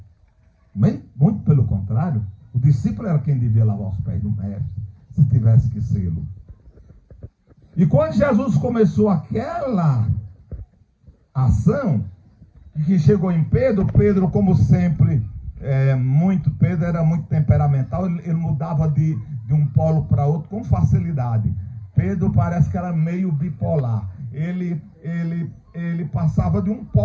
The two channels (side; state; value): both; identical; correlation 1.00